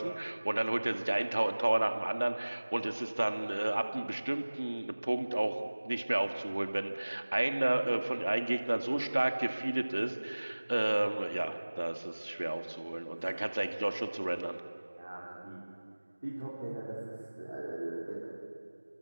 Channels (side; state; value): both; inverted; correlation -1.00